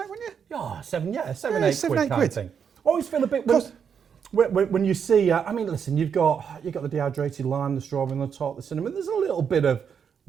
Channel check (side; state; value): left; quieter; 7.2 dB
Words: wouldn't you? Yeah, seven, Yeah, 8 7, quid 8 kind quid. of thing. Always feel a bit when you see. I mean, listen, you've got the dehydrated lime, the strawberry on the top, the cinnamon. There's a little bit of